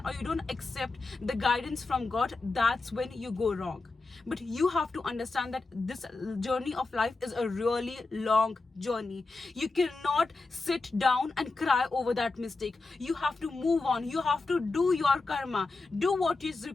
or you don't accept the guidance from God, that's when you go wrong. But you have to understand that this journey of life is a really long journey. You cannot sit down and cry over that mistake. You have to move on. You have to do your karma, do what is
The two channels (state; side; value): quieter; right; 3.6 dB